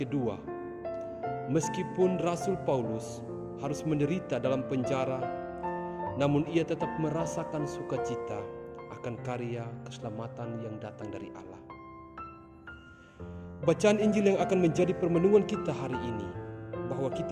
meskipun Rasul Paulus harus menderita dalam penjara, namun ia tetap merasakan sukacita akan karya keselamatan yang datang dari Allah. Bacaan Injil yang akan menjadi permenungan kita hari ini, bahwa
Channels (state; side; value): identical; both; correlation 1.00